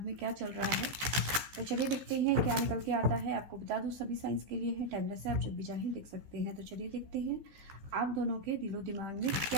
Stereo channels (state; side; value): late; left; 15 ms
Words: में क्या चल रहा है। तो चलिए देखते हैं क्या निकल के आता है। आपको बता दूँ, सभी साइंस के लिए है, टाइमलेस है, आप जब भी चाहें देख सकते हैं। तो चलिए देखते हैं आप दोनों के दिलो दिमाग में